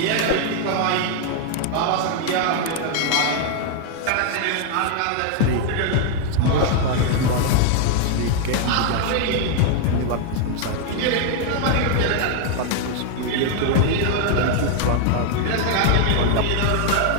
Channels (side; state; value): both; different; correlation 0.00